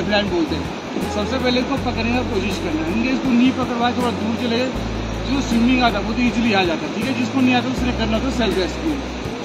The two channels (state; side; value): identical; both; correlation 1.00